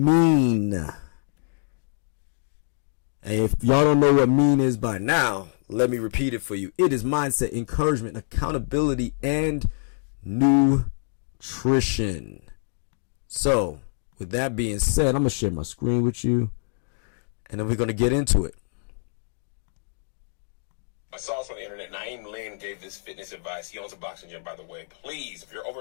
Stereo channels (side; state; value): right; silent; digital silence